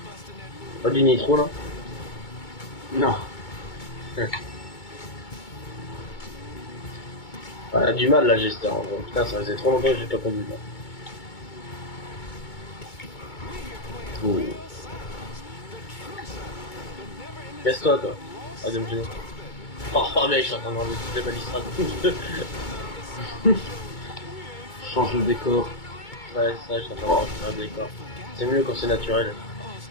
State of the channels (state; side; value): late; right; 2.2 ms